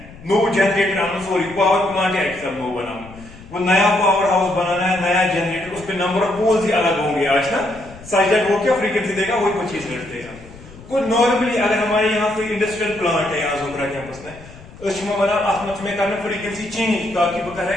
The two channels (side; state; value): left; noise; rumble, 19 dB below the sound